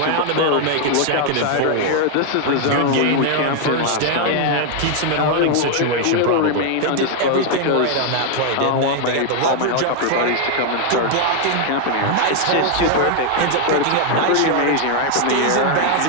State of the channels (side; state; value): both; different; correlation 0.00